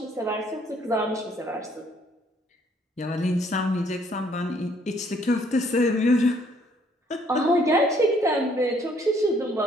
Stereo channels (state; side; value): normal; both; correlation 0.64